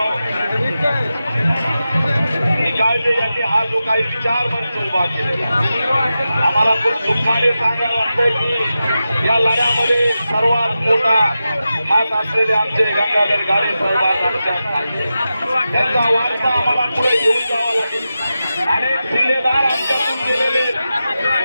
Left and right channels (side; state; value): both; inverted; correlation -0.92